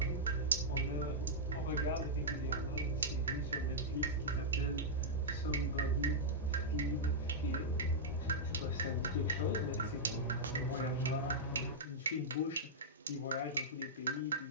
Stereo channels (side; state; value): both; normal; correlation -0.08